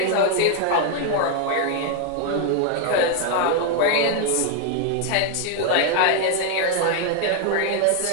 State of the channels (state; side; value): different; both; correlation 0.00